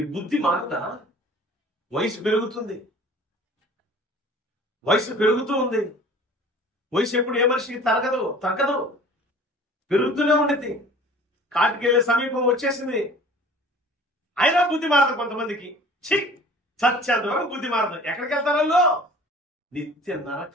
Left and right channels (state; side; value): normal; both; correlation 0.46